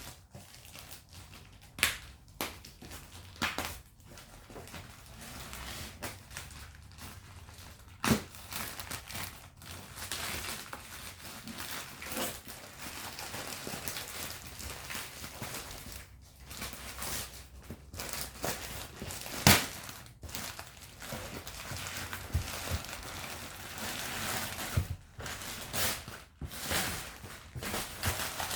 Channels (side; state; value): both; identical; correlation 1.00